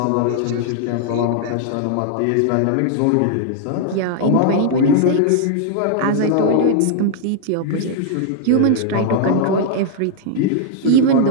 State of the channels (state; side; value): different; both; correlation -0.01